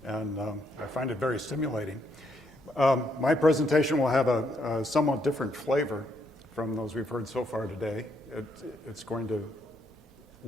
and I find it very stimulating. My presentation will have a somewhat different flavor from those we've heard so far today. It's going to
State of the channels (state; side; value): normal; both; correlation 0.75